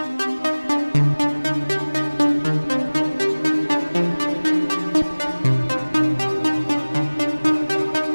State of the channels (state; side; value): inverted; both; correlation -1.00